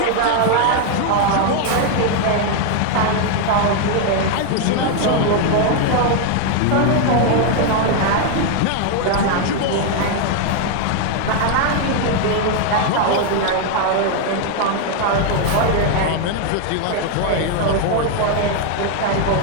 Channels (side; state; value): both; different; correlation 0.00